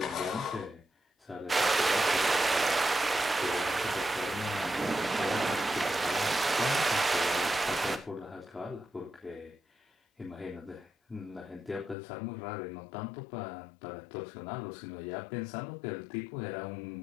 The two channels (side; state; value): right; drops out; at 12.0 s